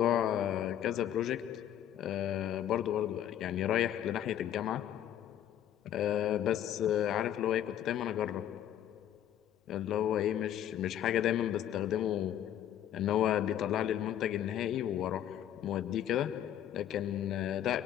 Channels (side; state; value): right; quieter; 10.9 dB